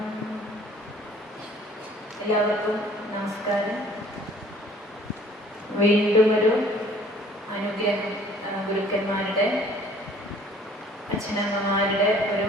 എല്ലാവർക്കും നമസ്കാരം. വീണ്ടും ഒരു അനുഗ്രഹം, ഗുരുക്കന്മാരുടെ അച്ഛനമ്മമാരുടെ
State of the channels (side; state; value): both; normal; correlation 0.54